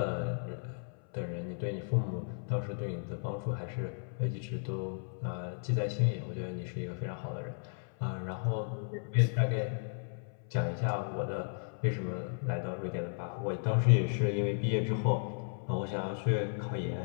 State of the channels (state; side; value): silent; right; 55 dB below the other